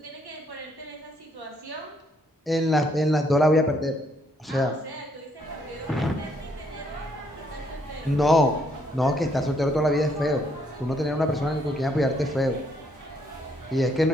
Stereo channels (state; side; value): normal; both; correlation 0.70